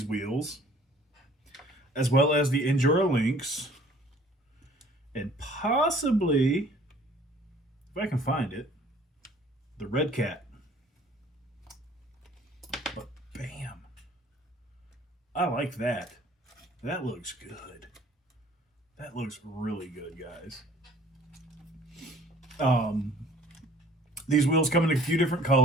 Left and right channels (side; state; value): both; normal; correlation 0.54